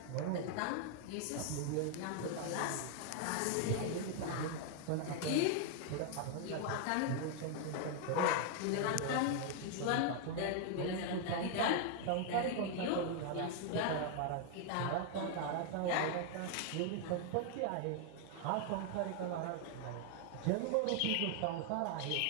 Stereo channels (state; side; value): different; both; correlation 0.00